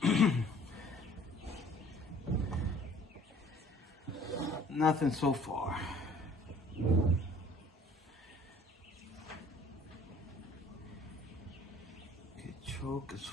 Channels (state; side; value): normal; both; correlation 0.54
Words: Nothing so far. Okay, choke is